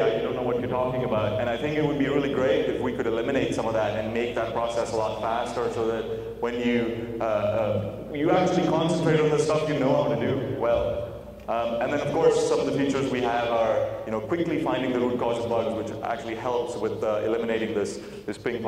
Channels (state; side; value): identical; both; correlation 1.00